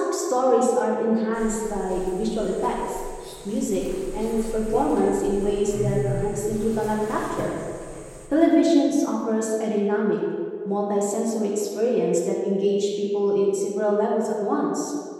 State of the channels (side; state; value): both; identical; correlation 1.00